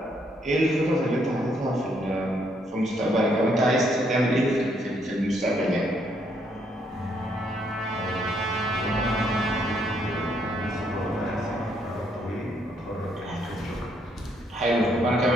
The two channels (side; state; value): both; normal; correlation 0.72